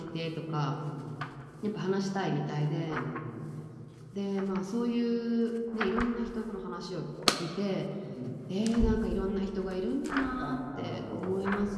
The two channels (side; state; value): both; identical; correlation 1.00